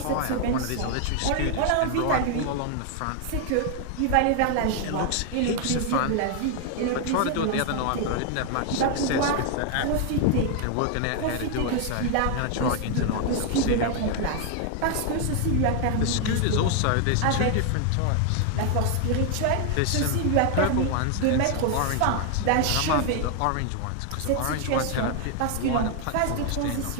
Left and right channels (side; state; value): both; different; correlation 0.00